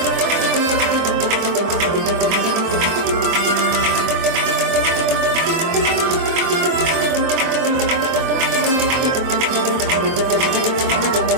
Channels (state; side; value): late; left; 23 ms